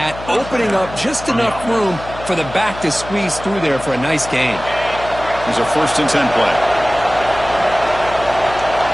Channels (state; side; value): noise; left; hum, 13 dB below the sound